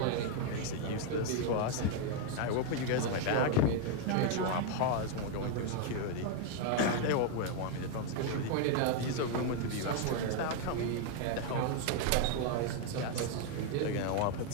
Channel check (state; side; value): different; both; correlation 0.01